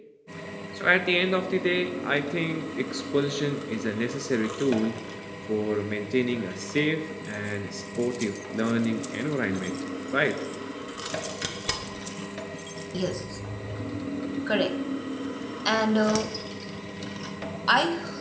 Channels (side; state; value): both; identical; correlation 1.00